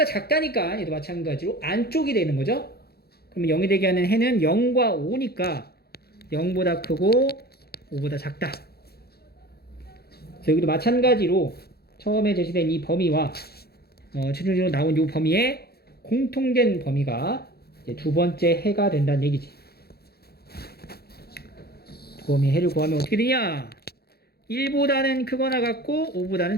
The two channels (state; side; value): late; right; 0.46 ms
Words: 작다니까 얘도 마찬가지로 안쪽이 되는 거죠. 그러면 0이 되게 하는 해는 0과 5니까 0보다 크고 5보다 작다. 그래서 여기도 마찬가지로 처음에 제시된 이 범위와 최종적으로 나온 이 범위에 공통된 범위가 이제 두 번째 해가 된다는 얘기지. 두 범위의 해를 구하면 어떻게 되냐? 1보다는 크거나 같고 5보다는